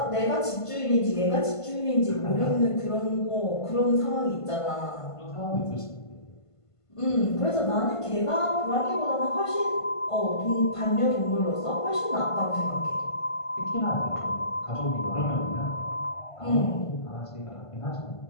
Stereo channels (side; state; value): right; late; 1.5 ms